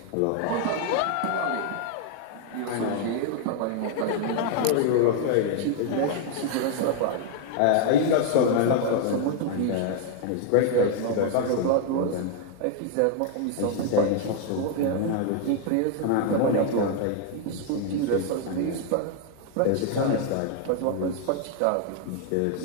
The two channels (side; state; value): both; different; correlation 0.00